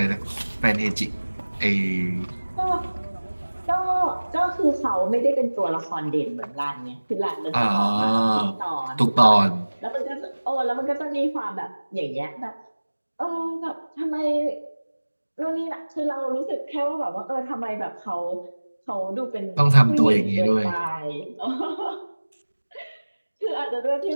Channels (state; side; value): inverted; both; correlation -1.00